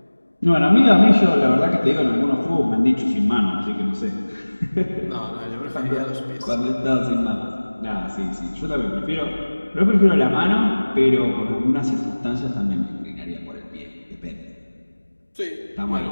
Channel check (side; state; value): both; inverted; correlation -1.00